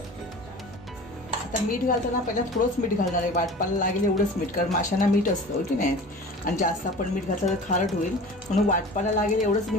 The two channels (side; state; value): both; normal; correlation 0.39